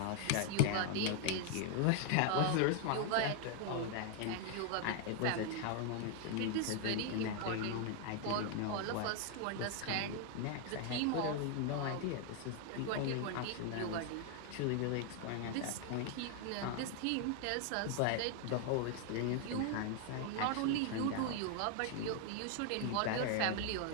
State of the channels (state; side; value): different; both; correlation 0.00